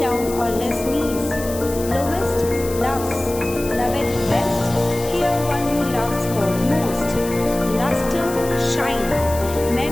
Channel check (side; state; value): left; noise; hiss, 12 dB below the sound